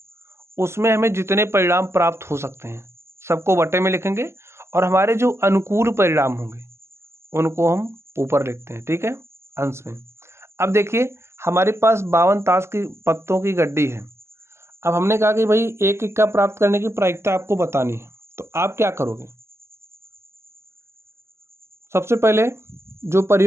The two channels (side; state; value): left; late; 0.13 ms